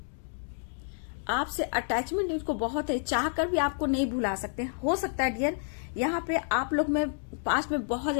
आपसे अटैचमेंट इनको बहुत है, चाहकर भी आपको नहीं भुला सकते। हो सकता है डियर यहाँ पे आप लोग में पास्ट में बहुत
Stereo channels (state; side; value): silent; right; digital silence